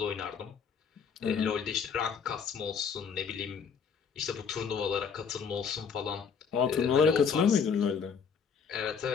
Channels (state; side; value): quieter; right; 6.4 dB